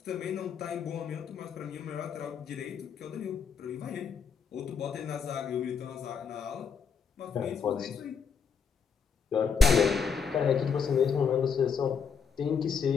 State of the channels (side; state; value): right; quieter; 6.1 dB